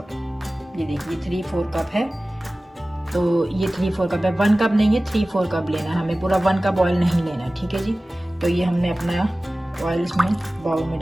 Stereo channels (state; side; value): normal; both; correlation 0.97